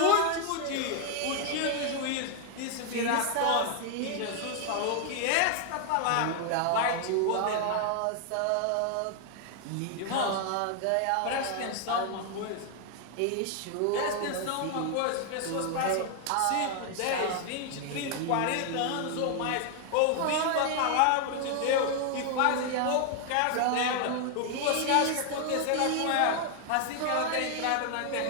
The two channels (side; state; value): both; different; correlation 0.00